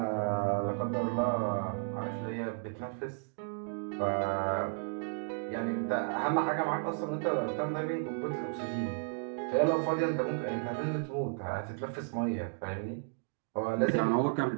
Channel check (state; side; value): silent; left; digital silence